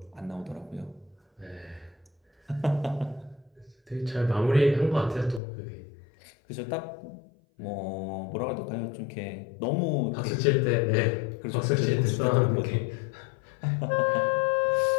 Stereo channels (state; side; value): drops out; right; at 5.4 s